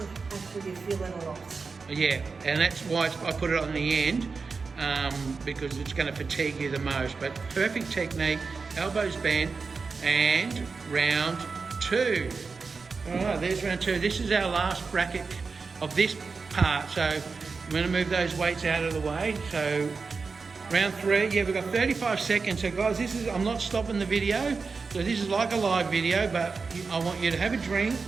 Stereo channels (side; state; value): left; quieter; 4.7 dB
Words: actually you feel it a lot. Yeah, and that's why I put it on the end. Because it's going to fatigue you the most. But perfect technique, elbows bent, and round 2. All right, there's round 2. This is our last bracket of this part. So I'm going to move those weights out of the way. So round 3, yeah, we've got 35 seconds. So guys, I'm not stopping the video. So this is like a live video, but I want you to have a drink